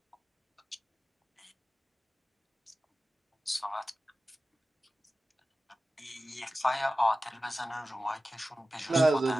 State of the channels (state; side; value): normal; both; correlation 0.95